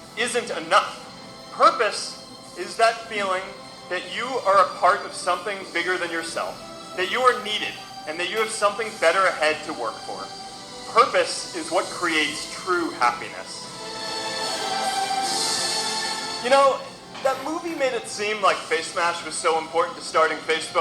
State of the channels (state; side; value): identical; both; correlation 1.00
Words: isn't enough. Purpose is that feeling that you are a part of something bigger than yourself, that you are needed, and that you have something better ahead to work for. Purpose is what creates true happiness. You know, that movie made it seem like Face Smash was so important to starting